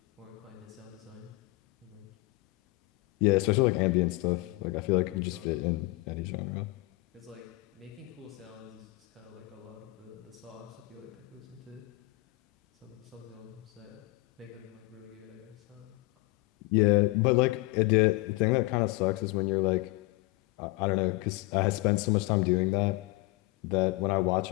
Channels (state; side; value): quieter; right; 22.2 dB